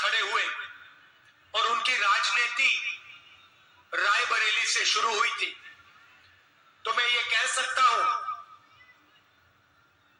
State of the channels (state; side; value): identical; both; correlation 1.00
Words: खड़े हुए और उनकी राजनीति रायबरेली से शुरू हुई थी। तो मैं ये कह सकता हूं